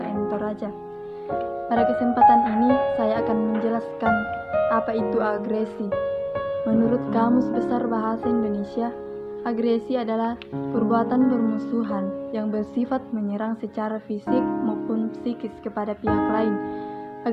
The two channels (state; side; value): identical; both; correlation 1.00